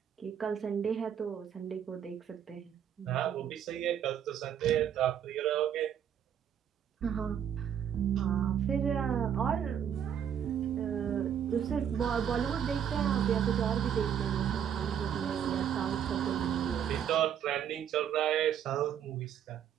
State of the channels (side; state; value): left; quieter; 9.0 dB